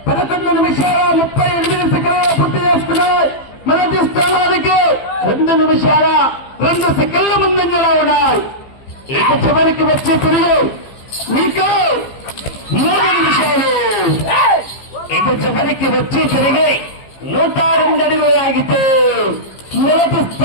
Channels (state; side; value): late; right; 15 ms